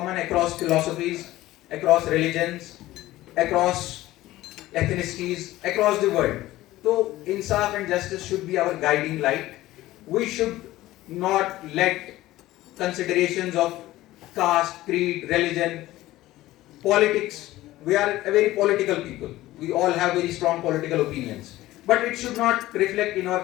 across philosophies, across religions, across ethnicities, across the world. So insaf and justice should be our guiding light. We should not let considerations of caste, creed, religion, politics. We are a very political people. We all have very strong political opinions. But it should not reflect in our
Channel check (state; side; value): quieter; right; 16.4 dB